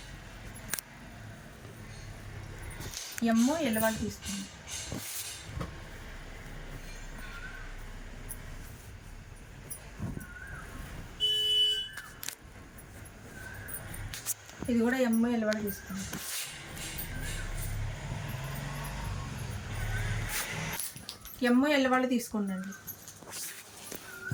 ఎమ్ ఎల్ వాళ్ళు తీసుకోండి. ఇది కూడా ఎమ్ ఎల్ వాళ్ళు తీసుకోండి. ఎమ్ ఎల్ వాళ్ళు తీసుకోండి అండి.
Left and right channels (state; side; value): identical; both; correlation 1.00